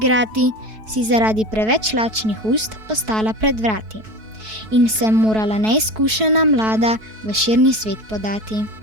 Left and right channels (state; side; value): late; left; 4.6 ms